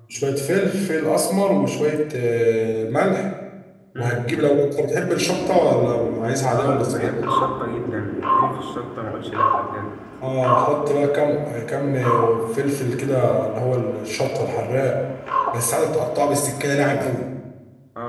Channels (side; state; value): both; identical; correlation 1.00